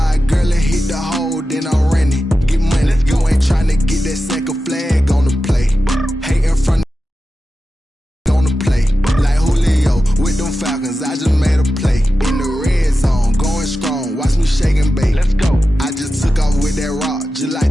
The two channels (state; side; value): normal; both; correlation 0.92